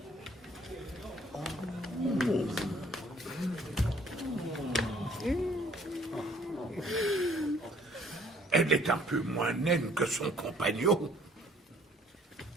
Elle est un peu moins naine que son compagnon.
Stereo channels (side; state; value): both; normal; correlation 0.59